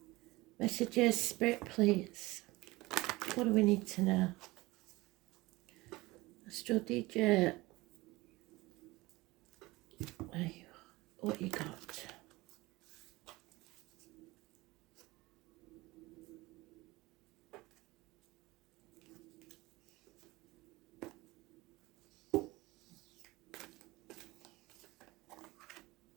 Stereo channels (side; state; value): left; quieter; 20.9 dB